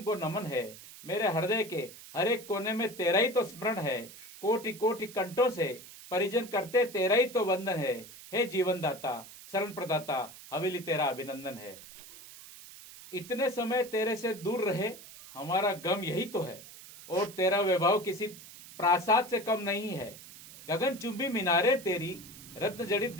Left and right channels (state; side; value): noise; right; hiss, 17 dB below the sound